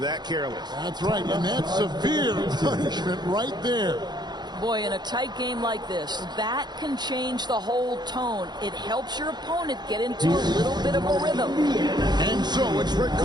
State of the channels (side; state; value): left; late; 0.21 ms